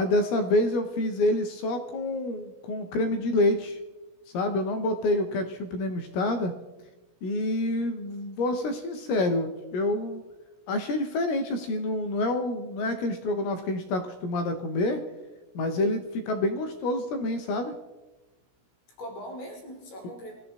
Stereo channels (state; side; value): late; right; 16 ms